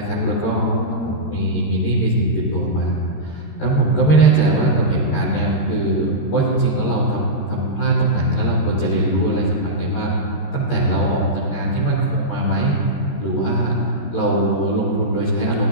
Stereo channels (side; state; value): right; late; 13 ms